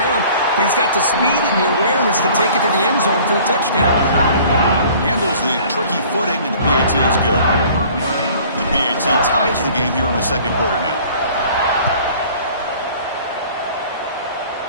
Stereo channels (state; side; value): inverted; both; correlation -0.50